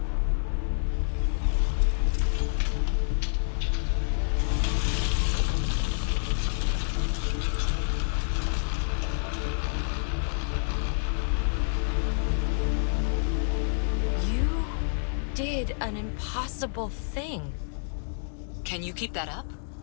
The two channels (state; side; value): silent; right; digital silence